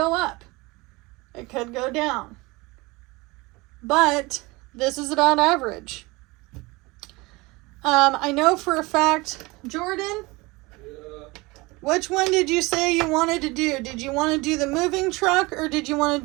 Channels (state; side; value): quieter; left; 23.5 dB